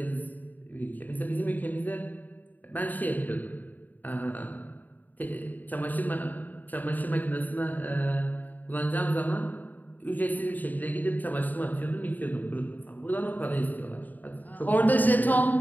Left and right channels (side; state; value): right; late; 0.084 ms